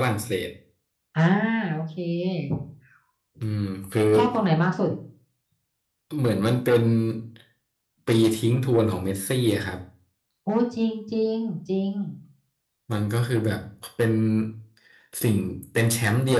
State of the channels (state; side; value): identical; both; correlation 1.00